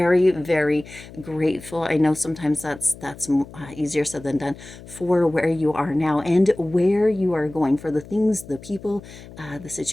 very grateful. I know sometimes that's easier said than done, for where you are now and where you are going, for the things, the people, the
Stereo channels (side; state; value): left; noise; hum, 17 dB below the sound